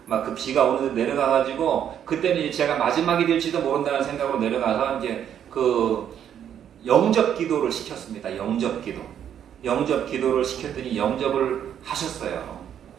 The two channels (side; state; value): left; quieter; 9.4 dB